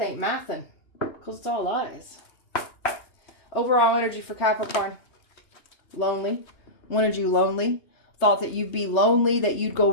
ain't mathin'. Because it's all lies. Overall energy for Capricorn. Lonely. Wanted you lonely. Thought that you'd be lonely, that you'd go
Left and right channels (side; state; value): right; late; 2.9 ms